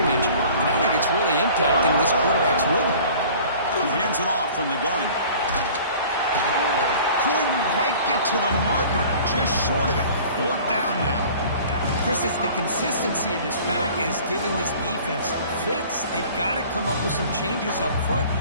and I think it's really impacting this quarterback's rhythm. He hands it off from the gun. Couldn't quite get to the marker, just short of it. Fourth down now. Chris, it's the consistency of this back is giving this defense fits. They've got to come up with some changes up front.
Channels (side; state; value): both; inverted; correlation -0.47